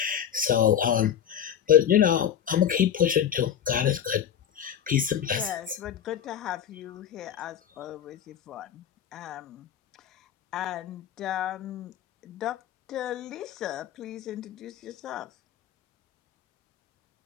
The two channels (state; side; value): quieter; right; 9.3 dB